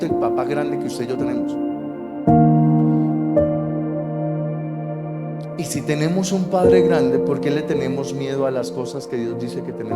del papá grande que usted y yo tenemos. Y si tenemos un Padre grande, ¿por qué le tenemos miedo a las cosas que Dios dice que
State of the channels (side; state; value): both; identical; correlation 1.00